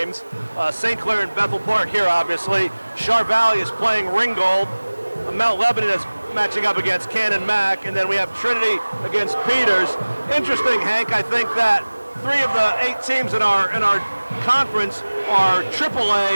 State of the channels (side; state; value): both; inverted; correlation -1.00